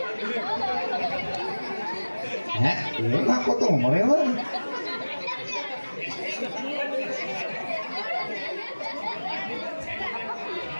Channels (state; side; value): inverted; both; correlation -1.00